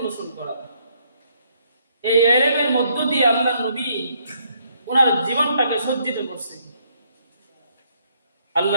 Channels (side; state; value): both; inverted; correlation -0.70